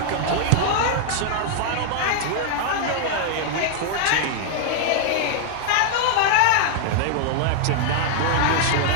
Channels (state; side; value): different; both; correlation -0.01